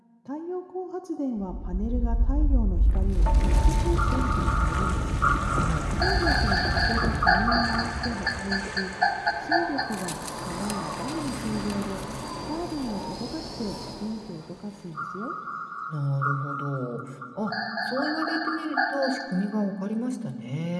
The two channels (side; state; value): both; identical; correlation 1.00